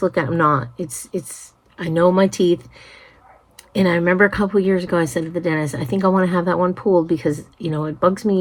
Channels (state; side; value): identical; both; correlation 1.00